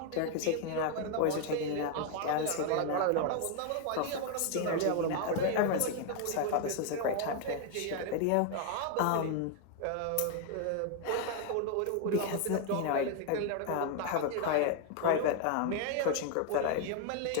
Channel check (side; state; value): both; different; correlation 0.00